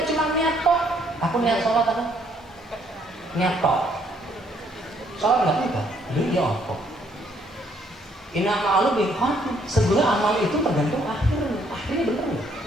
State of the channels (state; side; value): normal; both; correlation 0.67